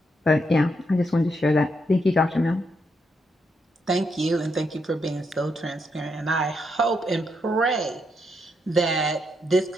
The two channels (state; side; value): normal; both; correlation 0.79